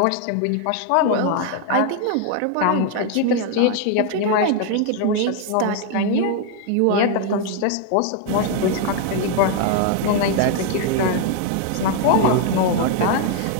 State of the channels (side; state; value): both; different; correlation 0.00